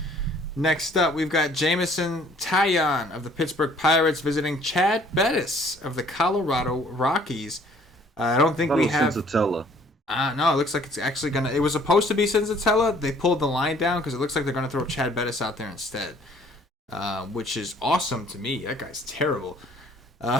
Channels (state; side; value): normal; both; correlation 0.57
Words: Next up, we've got Jameson Taillon of the Pittsburgh Pirates visiting Chad Bettis of the Colorado Rockies. I don't think we have Senzatella. No, it looks like it's actually gonna. It was supposed to be Senzatella. They pulled the line down because it looks like they're gonna throw Chad Bettis out there instead, which is awesome to me. That guy's terrible.